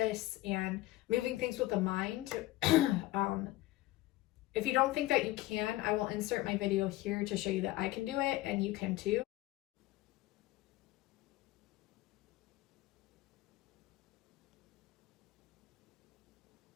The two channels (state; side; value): quieter; right; 17.3 dB